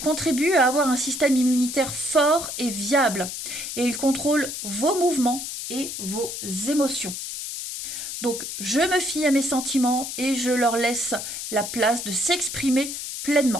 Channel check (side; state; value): left; noise; hiss, 6 dB below the sound